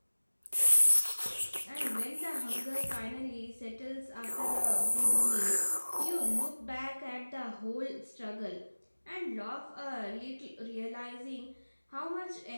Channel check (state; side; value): inverted; both; correlation -1.00